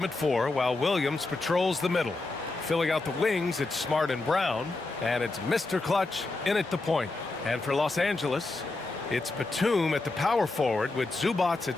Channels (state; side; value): quieter; right; 3.3 dB